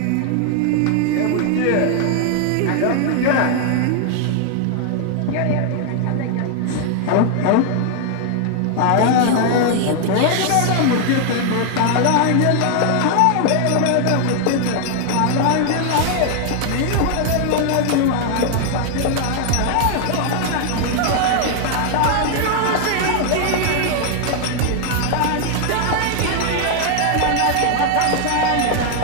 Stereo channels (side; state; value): both; different; correlation 0.00